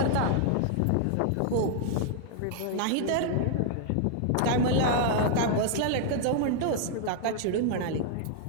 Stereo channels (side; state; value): both; different; correlation -0.01